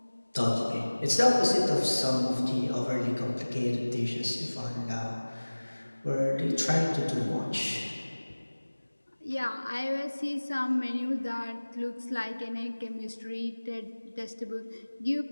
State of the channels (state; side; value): inverted; both; correlation -1.00